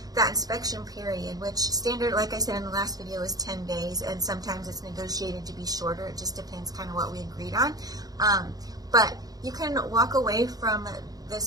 that inspection period, which standard, like I said in the last video, is 10 days, and sometimes it's negotiated to be shorter. It just depends kind of what we agreed on. But you can walk away from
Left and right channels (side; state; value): left; late; 0.18 ms